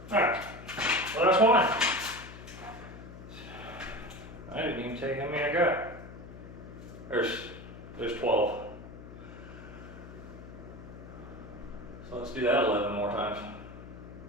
Alright. Well, that's one. I didn't even tell you how many I got. There's 12. So let's do that 11 more times.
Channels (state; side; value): noise; left; hum, 14 dB below the sound